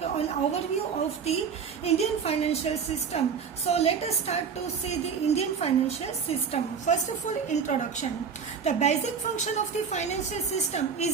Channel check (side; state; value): left; quieter; 6.4 dB